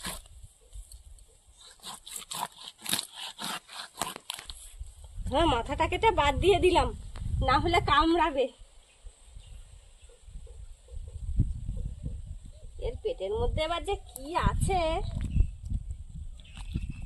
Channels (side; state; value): both; identical; correlation 1.00